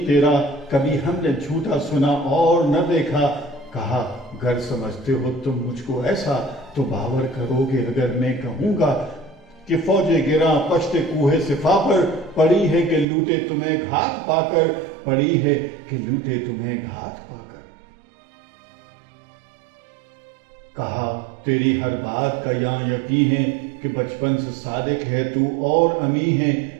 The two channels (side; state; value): left; drops out; at 13.1 s